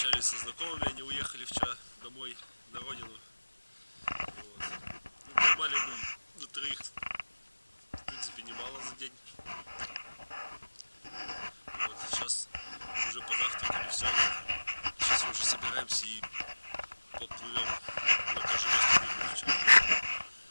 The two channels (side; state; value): both; inverted; correlation -1.00